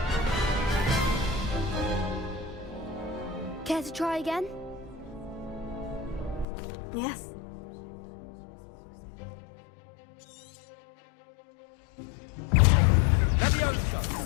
Care to try again? Yes. Leviosa!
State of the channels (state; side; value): drops out; right; at 6.5 s